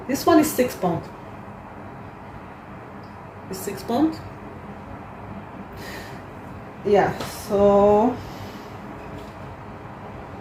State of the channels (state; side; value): identical; both; correlation 1.00